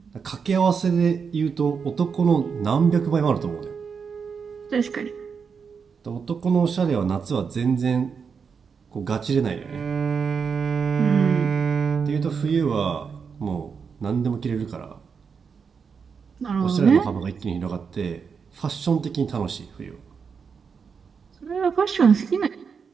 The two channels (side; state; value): left; quieter; 6.0 dB